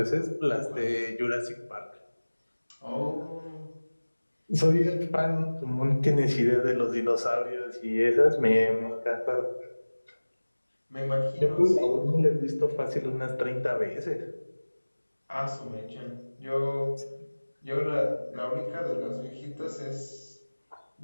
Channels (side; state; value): both; inverted; correlation -1.00